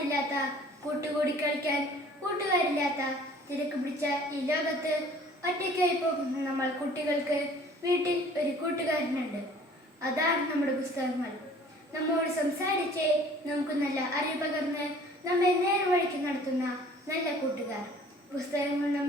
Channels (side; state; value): both; normal; correlation 0.52